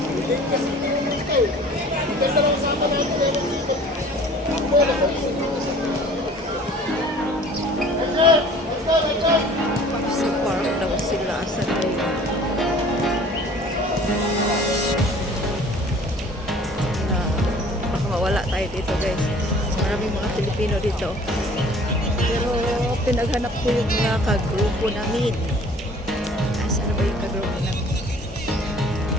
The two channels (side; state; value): both; normal; correlation 0.50